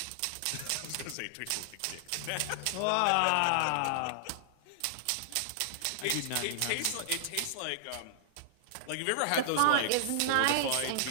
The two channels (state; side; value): different; both; correlation -0.01